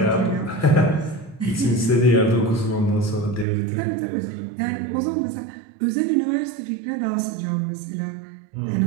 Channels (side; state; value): left; drops out; at 3.5 s